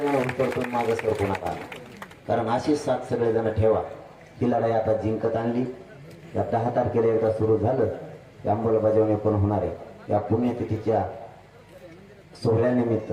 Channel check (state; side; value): identical; both; correlation 1.00